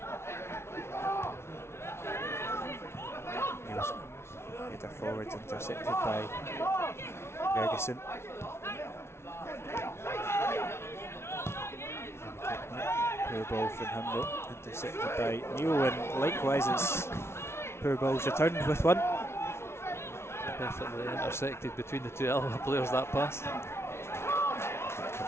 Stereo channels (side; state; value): right; late; 0.12 ms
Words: Header forwards, intercepted by Ferguson. Poor ball from him though, intercepted by Neil, and likewise it's poor balls returned with one. Perfectly intersected between the two Alloa players, that pass.